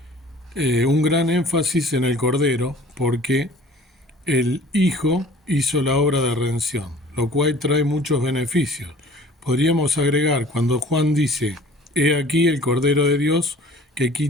un gran énfasis en el cordero, porque el Hijo hizo la obra de redención, lo cual trae muchos beneficios. Podríamos agregar, cuando Juan dice, he aquí el Cordero de Dios que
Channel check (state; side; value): normal; both; correlation 0.48